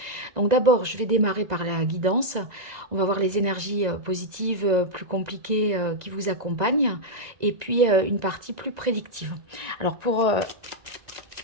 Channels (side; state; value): left; late; 2.0 ms